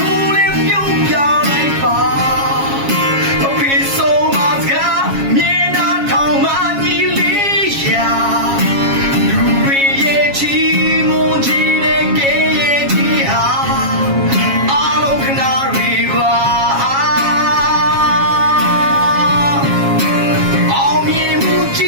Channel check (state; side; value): late; left; 7.3 ms